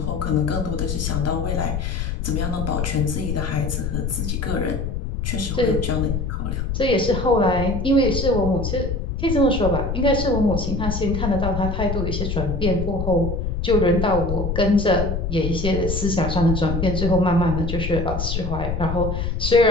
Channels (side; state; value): left; noise; rumble, 2 dB below the sound